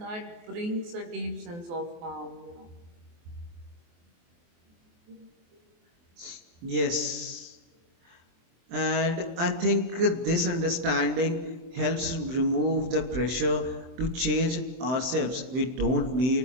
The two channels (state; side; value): late; left; 24 ms